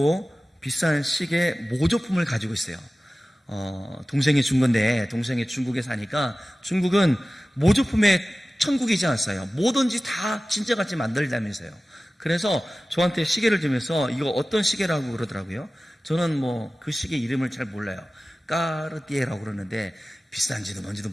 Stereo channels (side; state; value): both; normal; correlation 0.96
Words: 비싼 시계 모조품을 가지고 있어요. 동생이 준 건데 동생이 중국에 사니까 중국은 모조품의 천국이지 않았어요. 뭐든지 다 진짜같이 만들자면서요. 그래서 저한테 시계를 주면서 이거 어떤 시계라고 그러더라고요. 저는 그 시계 이름을 잘 몰라요. 까르띠에라고 그러는데 비싼지도 뭔지도